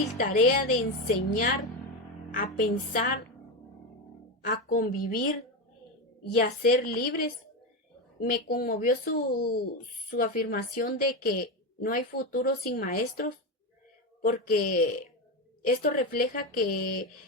tarea de enseñar a pensar, a convivir y a ser libres. Me conmovió su afirmación de que no hay futuro sin maestros, porque esto refleja que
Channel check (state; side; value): normal; both; correlation 0.14